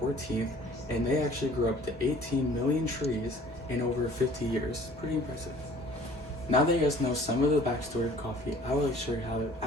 and they actually grew up to 18 million trees in over 50 years. Pretty impressive. Now that you guys know some of the backstory of coffee, I would like to show you how to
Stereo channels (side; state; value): both; normal; correlation 0.51